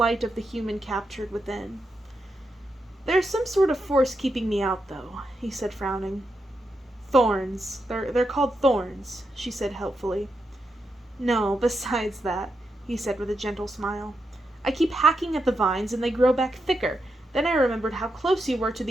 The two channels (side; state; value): both; normal; correlation 0.85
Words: of the human captured within. "There's some sort of force keeping me out, though," he said, frowning. "Thorns. They're called thorns," she said helpfully. "No, besides that," he said with a gentle smile. "I keep hacking at the vines and they grow back thicker. Then I remembered how close you were to